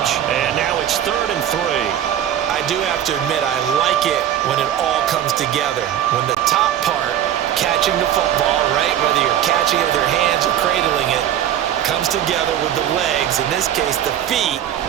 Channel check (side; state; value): left; quieter; 10.8 dB